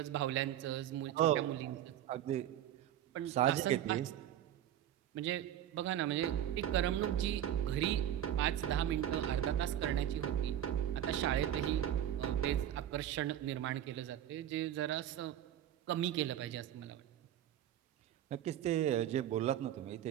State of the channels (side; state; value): left; quieter; 11.4 dB